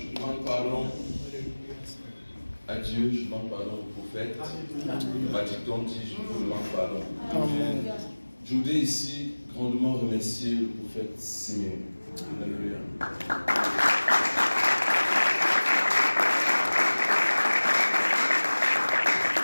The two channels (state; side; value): inverted; both; correlation -1.00